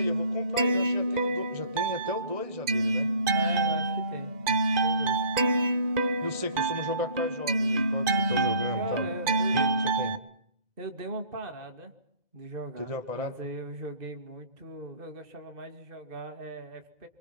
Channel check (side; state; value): left; late; 2.0 ms